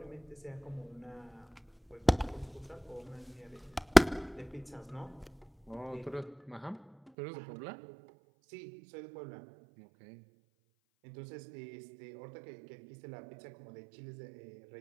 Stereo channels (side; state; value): left; drops out; at 7.1 s